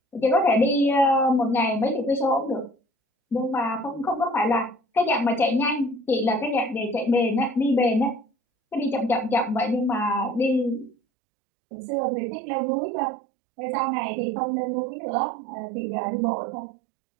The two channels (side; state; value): left; drops out; at 11.0 s